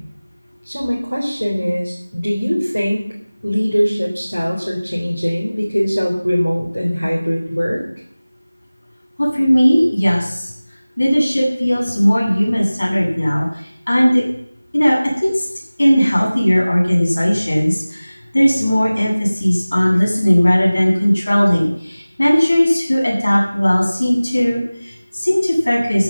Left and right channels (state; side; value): inverted; both; correlation -0.99